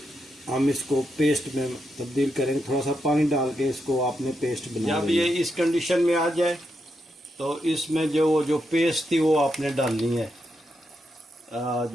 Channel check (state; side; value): normal; both; correlation 0.83